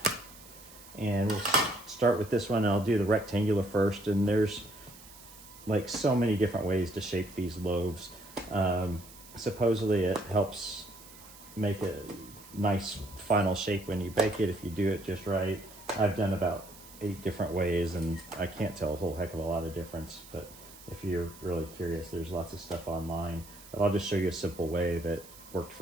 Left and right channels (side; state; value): right; noise; hiss, 19 dB below the sound